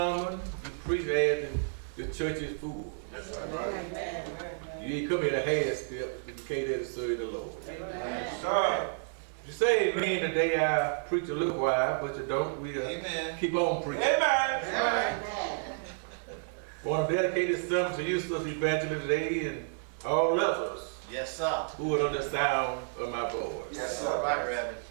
you preach as the church is full. You ain't come here to half step, but you came there to serve the Lord. Sir. You say amen today, I preach a little while, but you don't. We keep on preaching. Amen. I want to dedicate this sermon to you, Sister Evangelist, today, and all others Yes, sir. who are under the sound of my voice. Yes, sir. All right, Reverend.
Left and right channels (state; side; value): silent; left; 57 dB below the other